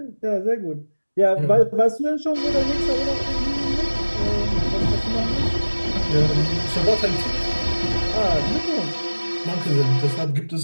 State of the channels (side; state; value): both; inverted; correlation -1.00